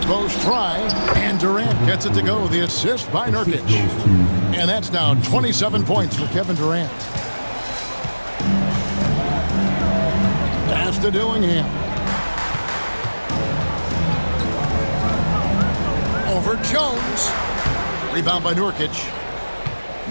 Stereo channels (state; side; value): inverted; both; correlation -1.00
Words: post try, and Durant gets it to go. The assist by Nurkic. And that's now 27 points for Kevin Durant. Pass to Dillingham. Over Jones. Rebound by Nurkic.